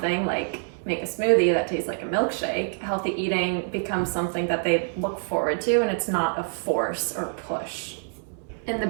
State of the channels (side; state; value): left; silent; 61 dB below the other